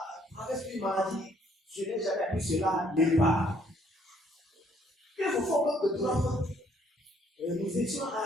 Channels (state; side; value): normal; both; correlation 0.65